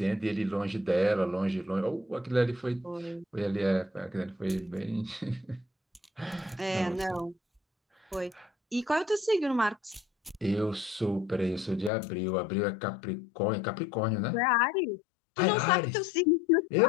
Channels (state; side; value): drops out; right; at 11.9 s